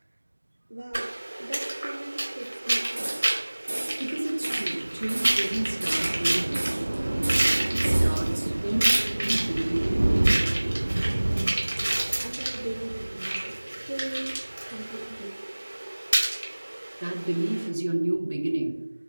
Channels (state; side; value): inverted; both; correlation -1.00